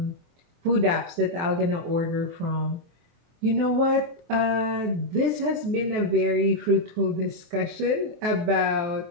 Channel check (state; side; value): late; left; 23 ms